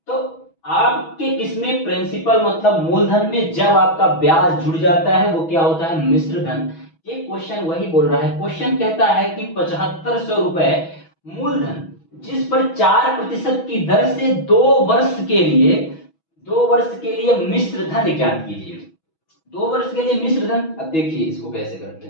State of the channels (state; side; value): late; right; 6.2 ms